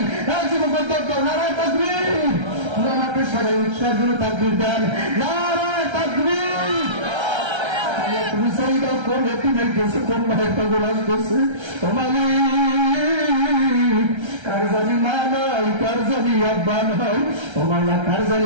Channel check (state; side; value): late; left; 1.3 ms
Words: জীবন দৌড়, নারায় তাকবীর, আমাকে সবাই উৎসাহের জন্য তাকবীর দেন, নারায় তাকবীর। তুমি চাইবা কোন একটি মেয়ে গেছে, কোন মায়ের পাগল আসতেছে, তোমাকে কার জানি মা নাই, কার জানি আব্বা নাই, তোমার না কার